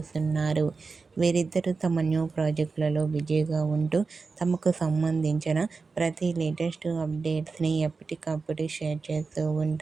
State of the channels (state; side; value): quieter; left; 4.4 dB